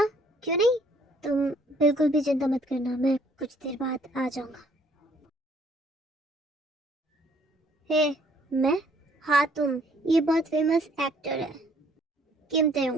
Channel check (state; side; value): normal; both; correlation 0.62